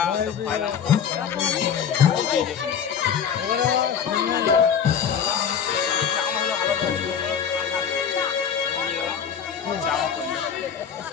সব খাইলাম এই যে। চা হলো ভালো চা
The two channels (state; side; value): quieter; right; 7.7 dB